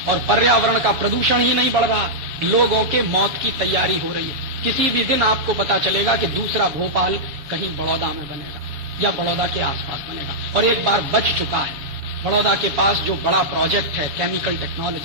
और पर्यावरण का प्रदूषण ही नहीं बढ़ रहा, लोगों के मौत की तैयारी हो रही है। किसी भी दिन आपको पता चलेगा कि दूसरा भोपाल कहीं बड़ौदा में बनेगा या बड़ौदा के आसपास बनेगा। और एक बार बच चुका है, बड़ौदा के पास जो बड़ा प्रोजेक्ट है केमिकल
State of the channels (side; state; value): left; late; 7.1 ms